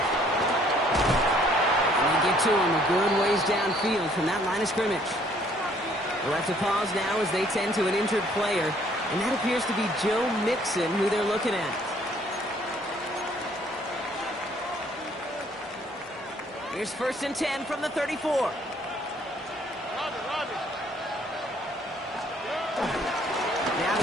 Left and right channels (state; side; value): normal; both; correlation 0.62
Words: And they get to him a good ways downfield from that line of scrimmage. We'll have to pause now as they tend to an injured player. And that appears to be Joe Mixon who they're looking at. Here's 1st and 10 from the 34. Now